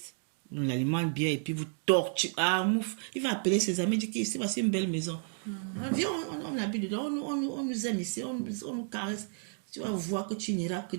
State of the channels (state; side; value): silent; left; 57 dB below the other